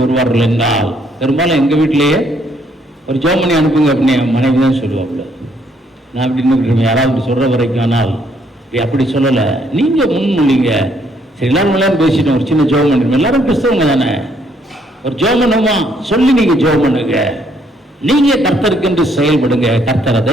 வருவார்கள் என்றால், பெரும்பாலும் எங்கள் வீட்டிலேயே ஒரு ஜெபம் பண்ணி அனுப்புங்க அப்படின்னு மனைவி தான் சொல்லுவாப்புல. நான் அப்படின்னு யாராவது சொல்கிற வரைக்கும். ஆனால் அப்படி சொல்லலை, நீங்கள் முன்மொழிங்க. சரி, எல்லாரும் பேசிட்டோம், ஒரு சின்ன ஜெபம் பண்ணிருக்கோம். எல்லாரும் கிறிஸ்தவங்க தானே, ஒரு ஜெபம் பண்ணுமா சொல்லி நீங்கள் ஜெபம் பண்ணுங்க. நீங்க கர்த்தருக்கென்று செயல்படுங்க, கர்த்தர்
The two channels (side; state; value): both; normal; correlation 0.69